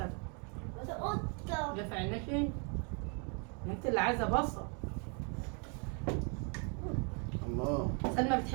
قطة جه في عينيكي؟ انت اللي عايزه بصل. الله. سلمى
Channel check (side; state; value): left; quieter; 37.3 dB